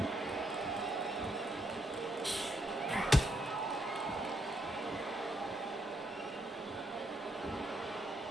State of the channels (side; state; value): both; normal; correlation 0.76